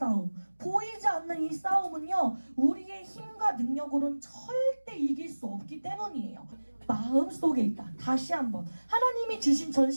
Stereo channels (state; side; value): inverted; both; correlation -1.00